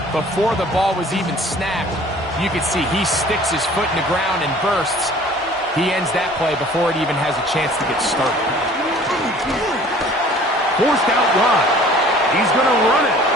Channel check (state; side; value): normal; both; correlation 0.50